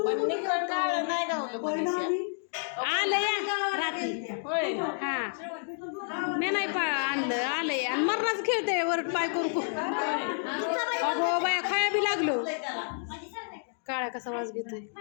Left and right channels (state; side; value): silent; right; digital silence